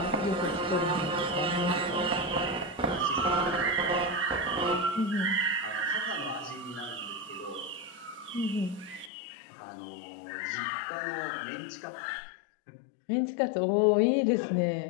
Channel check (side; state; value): right; drops out; at 9.1 s